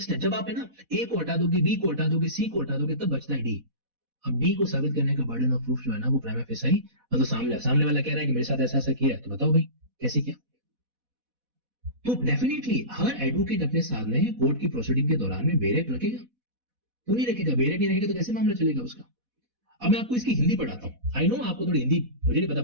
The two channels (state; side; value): late; left; 4.1 ms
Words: जब आप है ना ए को हटा दोगे, बी को हटा दोगे, सी को हटा दोगे, तब बचता है डी। अब डी को साबित करने का बर्डन ऑफ प्रूफ जो है ना वो प्राइमा फेसाई, मतलब सामने वाला कह रहा है कि मेरे साथ ऐसा ऐसा किया है, तो बताओ भाई कैसे किया? तो डेफिनेटली हर एडवोकेट अपने सामने कोर्ट की प्रोसीडिंग के दौरान में बेरेक रखेगा, तो नहीं रखेगा, बेरेक नहीं रखेगा तो कैसे मामला चलेगा उसका? अब मैं आपको इसकी हिंदी पढ़ाता हूं। आई नो आपको थोड़ी हिंदी मुझे नहीं पता